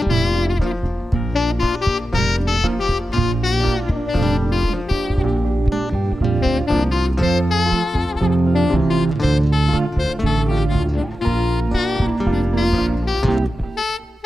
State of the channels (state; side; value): normal; both; correlation 0.92